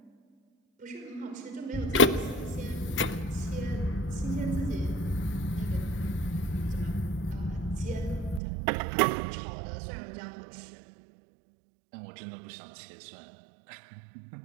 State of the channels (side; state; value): left; drops out; at 8.4 s